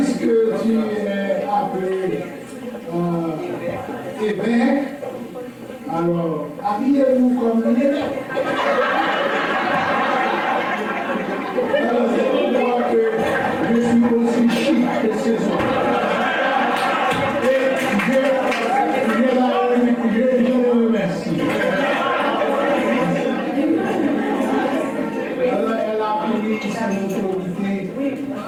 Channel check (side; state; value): both; identical; correlation 1.00